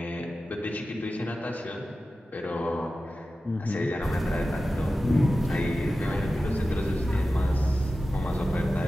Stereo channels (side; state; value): both; normal; correlation 0.94